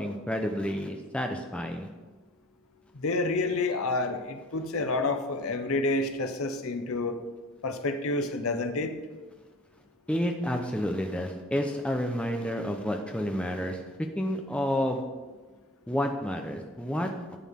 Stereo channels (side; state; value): both; normal; correlation 0.47